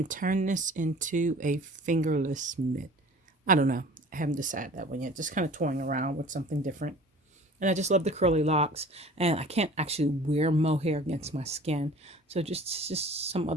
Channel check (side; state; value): both; normal; correlation 0.45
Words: turn this into a fingerless mitt. I don't know. I haven't decided that one yet. Just kind of toying around with something different. And I just love the curly locks, and I can't actually wear mohair against my skin. So just some